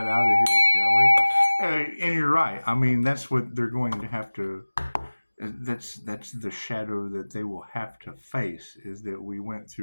out of here, shall we? And you're right. I mean, that's what they're going to have to. That's the shadow that they will have to face. Is that we went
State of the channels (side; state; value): both; inverted; correlation -1.00